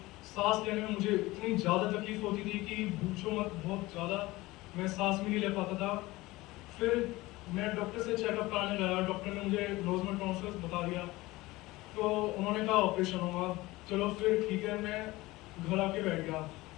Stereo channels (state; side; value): quieter; right; 19.8 dB